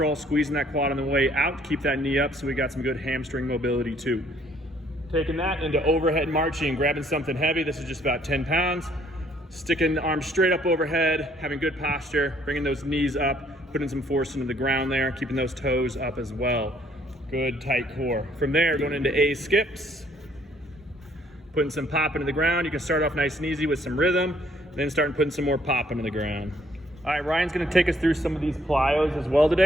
squeezing that quad on the way out. Keep that knee up so we got some good hamstring mobility too. Taking that into overhead marching, grabbing something heavy. This is just about 10 pounds. Sticking the arms straight up overhead, having good posture, bringing those knees up, putting some force into the ground there, keeping those toes up as well. Good tight core. From there, going into A skips, putting some pop into the ground. You can start off nice and easy with some rhythm, then start putting some more pop into the ground. All right, Ryan's gonna take us through some of these plyos as well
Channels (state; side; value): normal; both; correlation 0.64